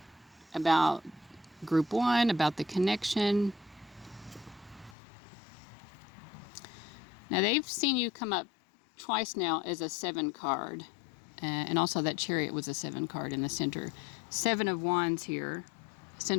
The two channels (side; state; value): right; drops out; at 5.0 s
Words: about group 1, about the connection? Now, they've seen you come up twice now as a 7 card. And also that Chariot was a 7 card in the center. 7 of Wands here.